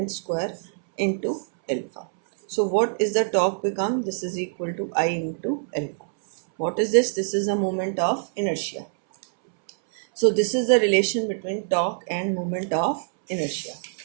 square into alpha. So what is the torque become? This is equal to I into alpha. What is this? This is the moment of inertia. So this is the relation between torque and moment of inertia.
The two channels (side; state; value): left; silent; 62 dB below the other